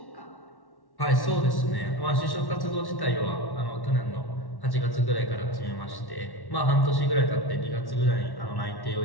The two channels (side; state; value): right; late; 1.1 ms